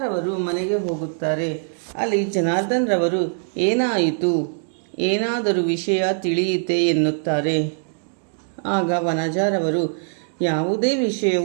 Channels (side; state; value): left; silent; 64 dB below the other